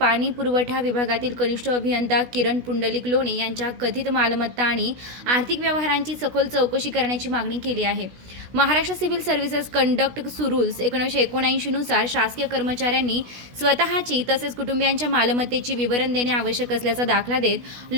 पुरवठा विभागातील कनिष्ठ अभियंता किरण पुंडलिक लोणे यांच्या कथित मालमत्ता आणि आर्थिक व्यवहारांची सखोल चौकशी करण्याची मागणी केली आहे। Maharashtra civil services conduct rules 1979 नुसार शासकीय कर्मचाऱ्यांनी स्वतःची तसेच कुटुंबियांच्या मालमत्तेची विवरण देणे आवश्यक असल्याचा दाखला देत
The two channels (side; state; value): left; late; 16 ms